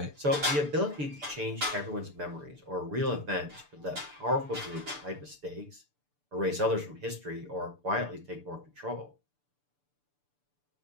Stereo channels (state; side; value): late; left; 6.9 ms